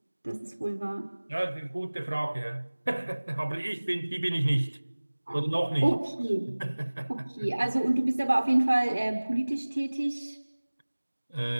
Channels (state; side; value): inverted; both; correlation -1.00